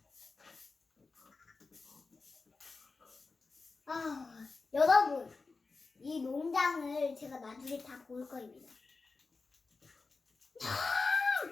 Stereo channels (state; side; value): quieter; right; 4.1 dB